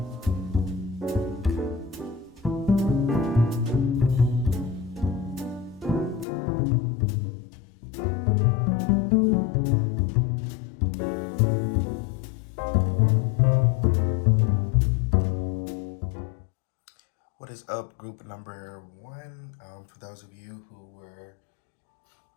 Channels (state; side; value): drops out; right; at 6.2 s